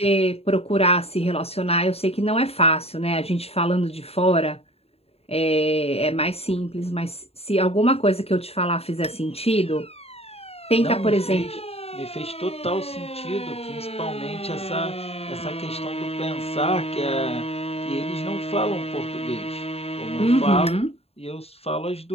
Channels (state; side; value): late; right; 0.29 ms